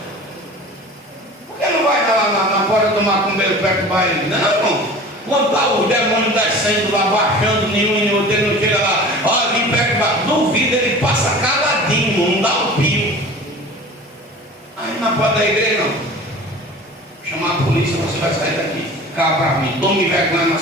Por que não vai lá na porta do macumbeiro perturbar ele? Não, irmão. Quando está os demônios descendo lá, baixando, nenhum e outro, ele não chega lá, olha, vem perturbar. Duvido, ele passa caladinho, não dá um pio. Aí na porta da igreja, não. Chamar a polícia, você vai sair daqui. Cá para mim, tome vergonha na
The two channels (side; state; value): both; normal; correlation 0.39